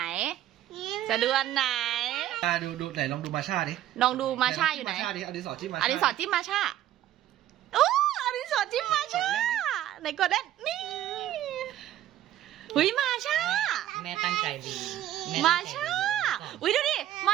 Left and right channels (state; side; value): quieter; left; 12.6 dB